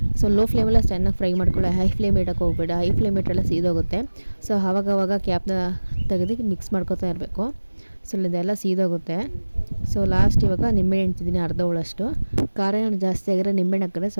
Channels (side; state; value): both; inverted; correlation -1.00